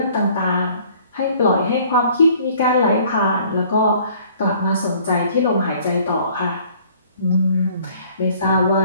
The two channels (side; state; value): both; inverted; correlation -0.56